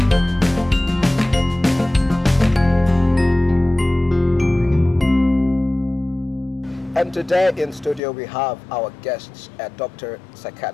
And today in studio we have our guests, a doctor,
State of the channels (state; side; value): drops out; right; at 8.0 s